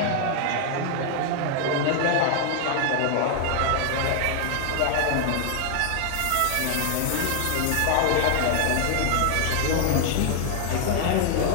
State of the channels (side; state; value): both; different; correlation 0.00